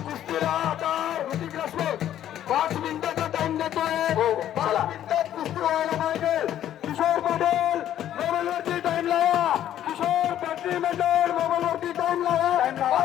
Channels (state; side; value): quieter; right; 11.4 dB